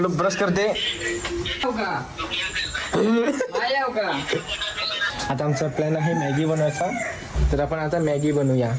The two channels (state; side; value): identical; both; correlation 1.00